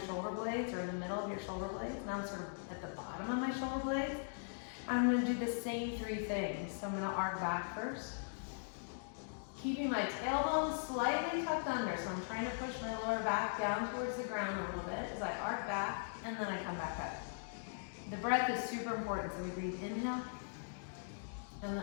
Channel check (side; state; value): right; silent; digital silence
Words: shoulder blades or in the middle of your shoulder blades. Now I'm sort of at the bottom of my shoulder blades. I'm going to do the same 3 things. So I'm going to arc back first, keeping my tailbone slightly tucked under. So I'm trying to push my lower back down towards the ground a little bit as I arc back, and then I come back up. The breath is super important. So we breathe inhale, and